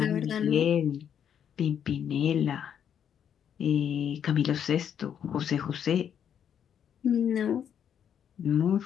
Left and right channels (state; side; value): quieter; right; 8.7 dB